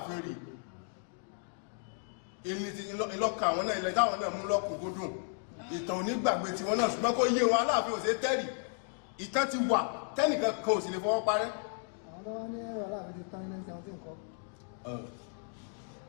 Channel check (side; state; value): right; silent; 55 dB below the other